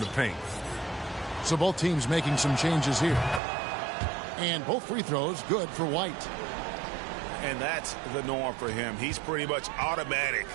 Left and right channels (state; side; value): drops out; left; at 3.4 s